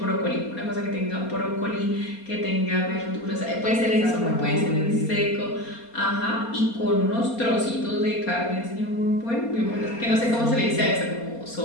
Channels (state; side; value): late; right; 4.3 ms